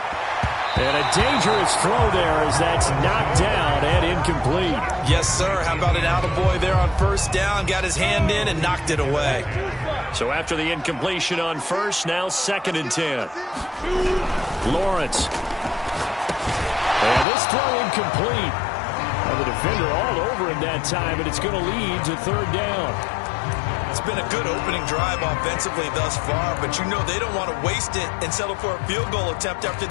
And a dangerous throw there as that's knocked down and incomplete. Yes, sir. How about an attaboy there on first down? Got his hand in and knocked it away. So after the incompletion on first, now 2nd and 10. Lawrence. And this throw incomplete. And the defender all over him that time, and it's going to lead to 3rd down. It's been a good opening drive offensively thus far, but you know they don't want to waste it and settle for a field goal attempt after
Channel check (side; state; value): right; drops out; at 17.2 s